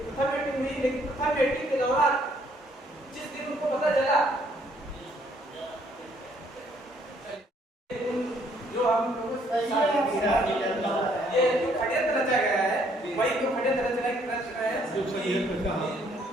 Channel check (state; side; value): normal; both; correlation 0.66